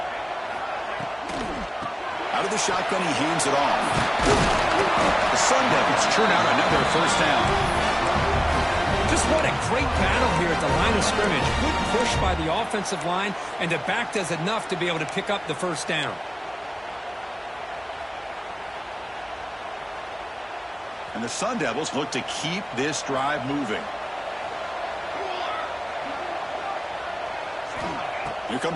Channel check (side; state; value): both; identical; correlation 1.00